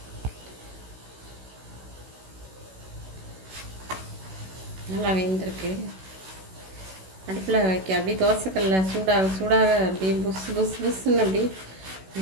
நல்லா வெந்திருக்கு. அடுப்பில் வைக்க அப்படியே தோசைக்கல்ல சூடாக சூடாக அப்படியே புஸ் புஸ் புஸ்ன்னு அப்படி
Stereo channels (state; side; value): late; left; 16 ms